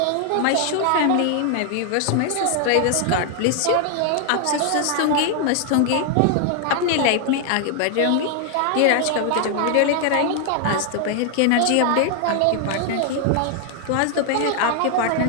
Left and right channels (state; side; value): different; both; correlation 0.00